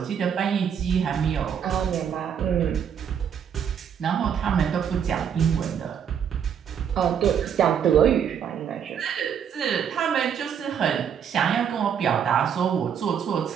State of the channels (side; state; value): left; quieter; 8.1 dB